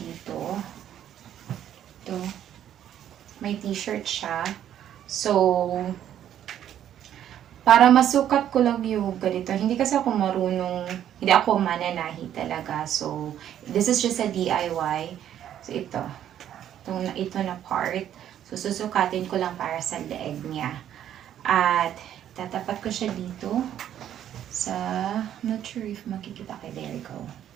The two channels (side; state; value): left; quieter; 10.7 dB